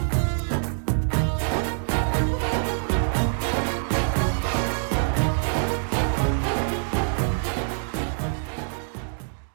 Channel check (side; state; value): left; silent; 62 dB below the other